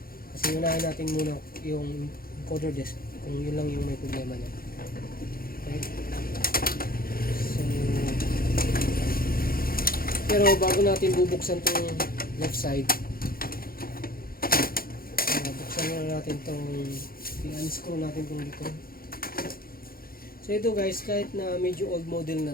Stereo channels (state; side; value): late; right; 0.43 ms